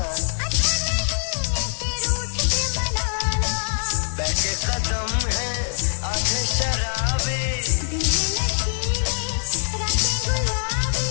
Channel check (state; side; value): silent; right; digital silence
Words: बैठे कदम है आधे शराबी,